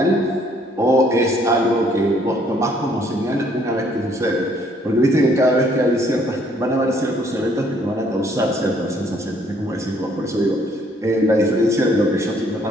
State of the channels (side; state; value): both; normal; correlation 0.64